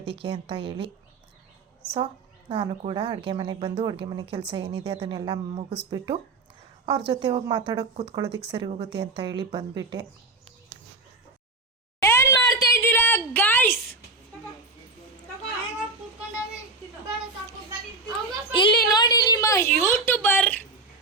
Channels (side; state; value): left; quieter; 3.5 dB